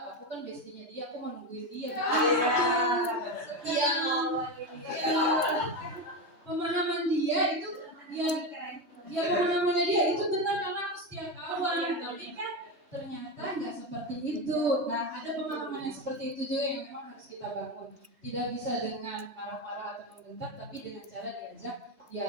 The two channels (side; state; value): left; late; 3.2 ms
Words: aku kan bestinya dia, aku mau nungguin dia. Iya, pemahaman dia itu, pemahamannya dia itu benar karena aku setia kawan, tapi kan ternyata nggak seperti itu. Nah, ada pemahaman yang seperti itu juga yang memang harus kita bangun. Tidak bisa dengan marah-marah atau membentak, tapi dengan cara diajak